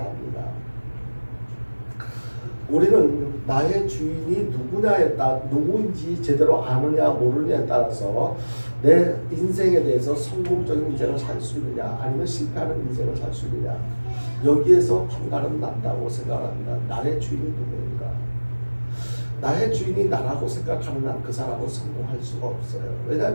합니다. 우리는 나의 주인이 누구인지 제대로 아느냐 모르느냐에 따라서 내 인생에 대해서 성공적인 인생을 살 수 있느냐 아니면 실패하는 인생을 살 수 있느냐 여기에서 판가름 난다고 생각합니다. 나의 주인이 누구인가? 나의 주인이 나라고 생각하는 한 그 사람은 성공할 수가 없어요.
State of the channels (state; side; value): inverted; both; correlation -1.00